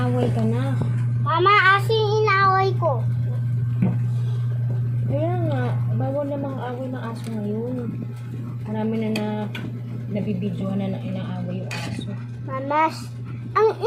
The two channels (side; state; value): both; identical; correlation 1.00